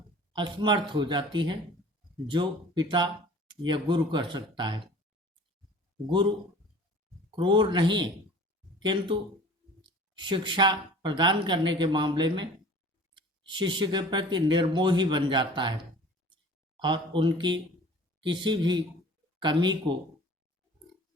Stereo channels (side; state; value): both; normal; correlation 0.45